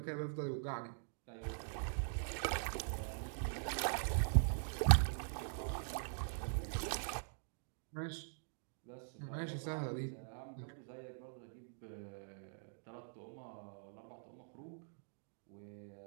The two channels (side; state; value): left; silent; digital silence